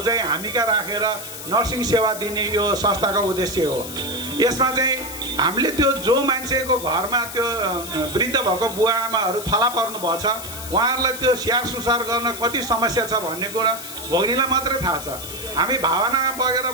चाहिँ हामी कहाँ राखेर नर्सिङ सेवा दिने यो संस्थाको उद्देश्य हो। यसमा चाहिँ हामीले त्यो जो मान्छेको घरमा त्यो वृद्ध भएको बुवा आमाहरू थला पर्नु भएको छ उहाँहरूलाई त्यो स्याहार सुसार गर्न कति समस्या छ भन्ने कुरा भोग्नेलाई मात्रै थाहा छ। हामी भावनामा बगेर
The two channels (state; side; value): noise; left; hiss, 10 dB below the sound